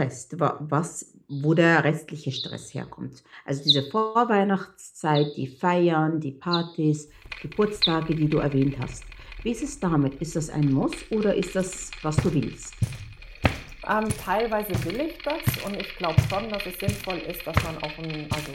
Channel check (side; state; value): both; identical; correlation 1.00